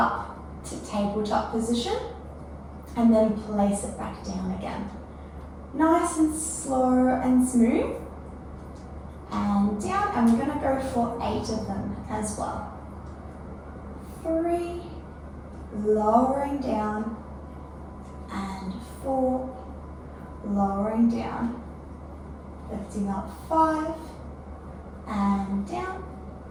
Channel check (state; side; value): identical; both; correlation 1.00